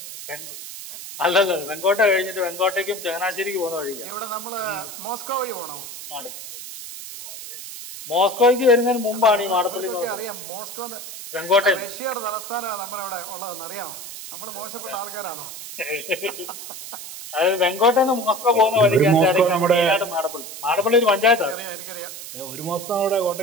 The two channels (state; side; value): noise; right; hiss, 11 dB below the sound